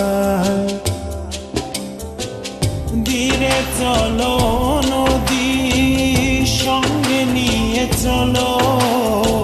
ধীরে চলো নদী সঙ্গে নিয়ে চলো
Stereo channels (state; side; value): identical; both; correlation 1.00